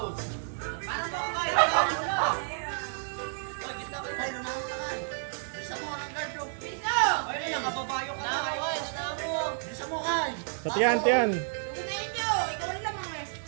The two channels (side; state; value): left; silent; digital silence